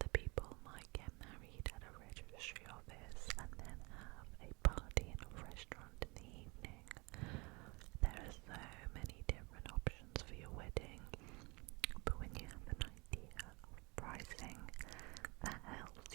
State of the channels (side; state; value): left; quieter; 27.1 dB